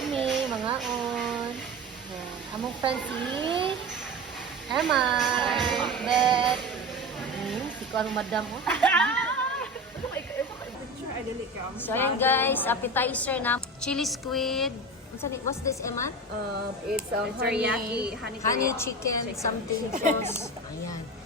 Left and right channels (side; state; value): both; normal; correlation 0.29